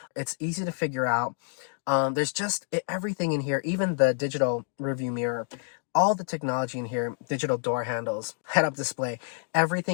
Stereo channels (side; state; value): right; silent; 59 dB below the other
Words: It's easy to figure out. There's just everything in here, even the digital review mirror, all the technology in here, digital door handles, head-up display,